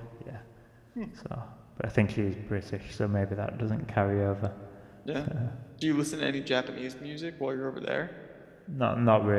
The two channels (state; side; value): identical; both; correlation 1.00